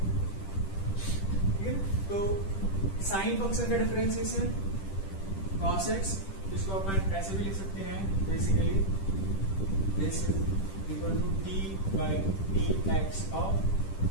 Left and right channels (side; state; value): right; late; 10 ms